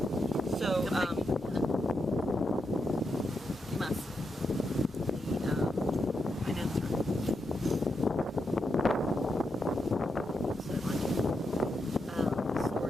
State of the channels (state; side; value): normal; both; correlation 0.84